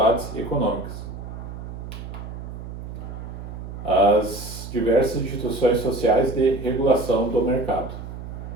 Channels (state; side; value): noise; right; hum, 10 dB below the sound